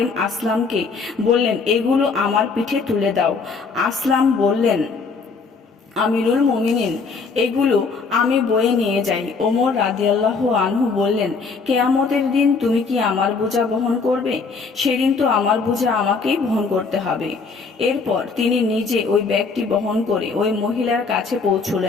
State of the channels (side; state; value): right; quieter; 4.7 dB